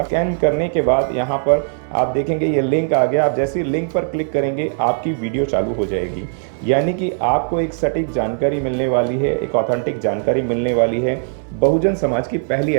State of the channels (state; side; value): silent; left; 67 dB below the other